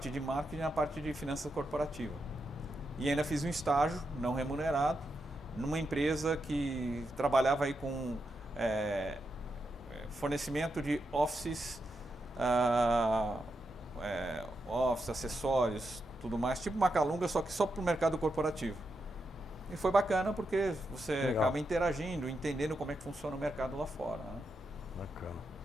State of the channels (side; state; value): both; normal; correlation 0.85